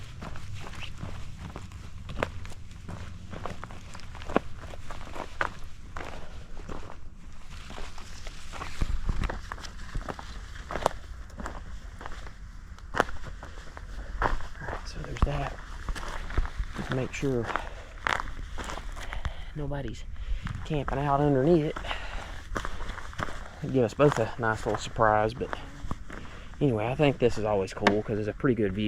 That to make sure nobody's camping out underneath it. It'd give us both a nice little surprise, but anyway, I think this is always cool because it's a pretty good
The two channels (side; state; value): both; identical; correlation 1.00